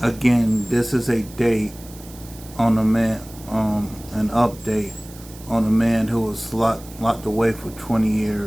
Again, this is a date on a man, an update on a man who was locked away for 20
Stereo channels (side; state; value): right; noise; hiss, 20 dB below the sound